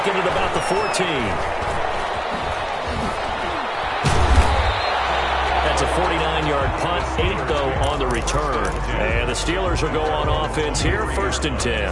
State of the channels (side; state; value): both; identical; correlation 1.00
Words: at about the 14. That's a 49-yard punt, 8 though on the return. And the Steelers will go on offense here, 1st and